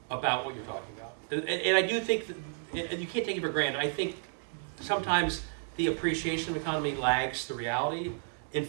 what you're talking about. And I do think that, and you can't take it for granted, I think sometimes the appreciation of the economy lags the reality.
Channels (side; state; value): left; silent; 57 dB below the other